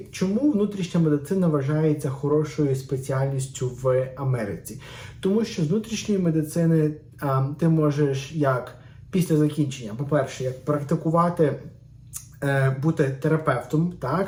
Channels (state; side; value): identical; both; correlation 1.00